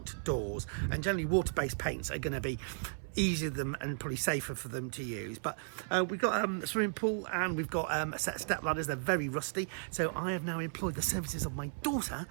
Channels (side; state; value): left; silent; 54 dB below the other